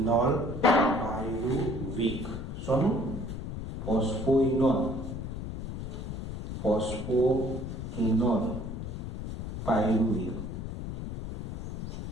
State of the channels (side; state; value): left; noise; rumble, 7 dB below the sound